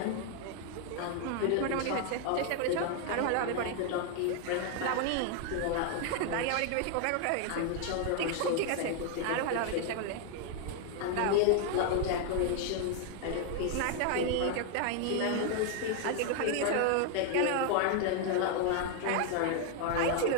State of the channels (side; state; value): both; different; correlation 0.00